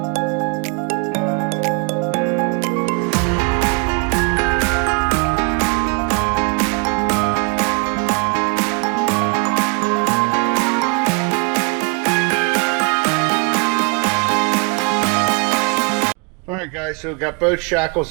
Alright guys, so we've got both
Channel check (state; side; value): quieter; left; 34.5 dB